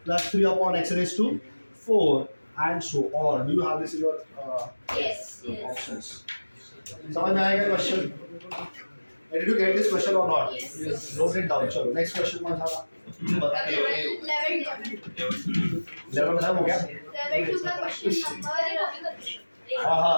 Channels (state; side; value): inverted; both; correlation -1.00